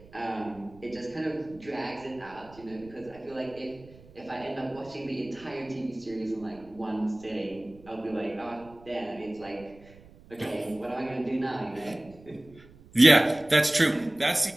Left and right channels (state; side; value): noise; right; rumble, 23 dB below the sound